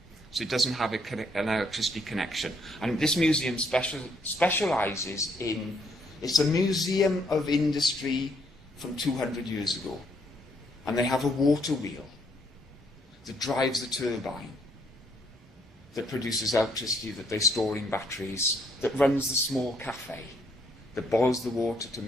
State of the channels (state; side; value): normal; both; correlation 0.70